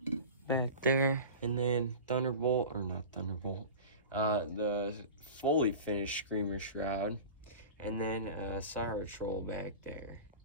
back there, and then Thunderbolt, or not Thunderbolt, the fully finished Screamer Shroud, and then Siren back there.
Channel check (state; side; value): inverted; both; correlation -0.34